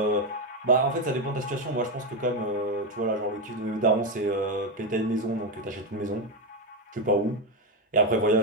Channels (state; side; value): normal; both; correlation 0.09